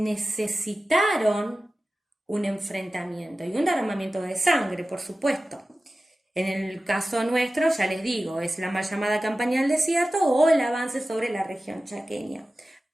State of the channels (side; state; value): both; normal; correlation 0.95